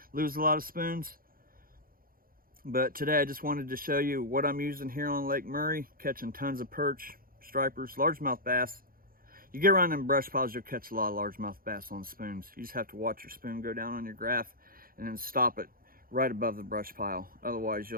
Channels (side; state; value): left; late; 0.42 ms